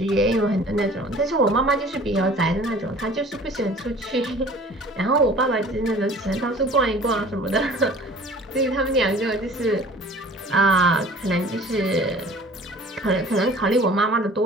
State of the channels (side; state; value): both; normal; correlation 0.47